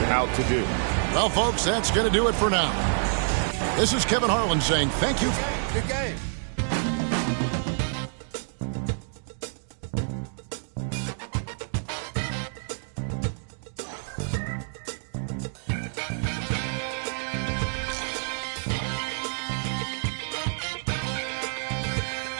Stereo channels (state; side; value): silent; left; digital silence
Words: out to do. Well, folks, that's going to do it for now. This is Kevin Harlan saying thank you. Good game.